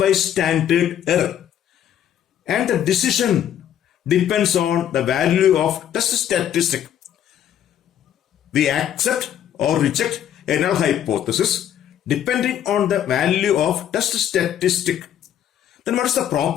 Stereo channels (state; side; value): quieter; right; 10.3 dB